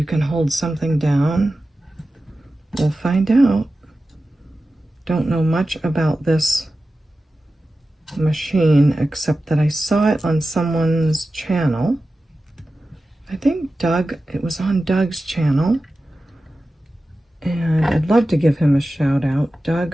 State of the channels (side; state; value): both; normal; correlation 0.94